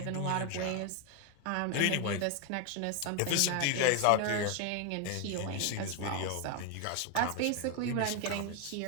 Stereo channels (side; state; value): both; different; correlation 0.01